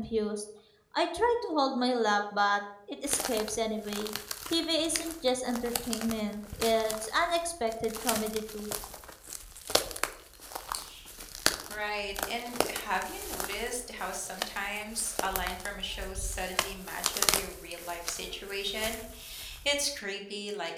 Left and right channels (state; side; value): identical; both; correlation 1.00